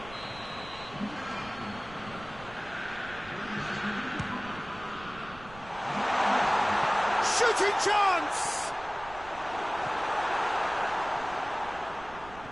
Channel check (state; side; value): noise; right; rumble, 18 dB below the sound